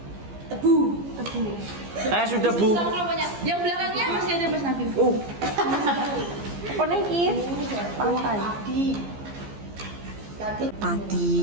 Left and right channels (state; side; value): late; left; 14 ms